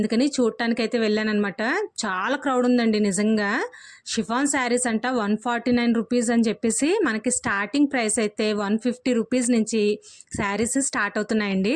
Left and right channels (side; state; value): both; identical; correlation 1.00